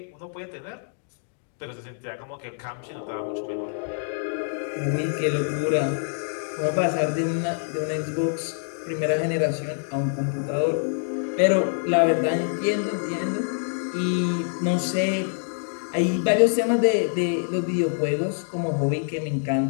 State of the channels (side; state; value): right; silent; digital silence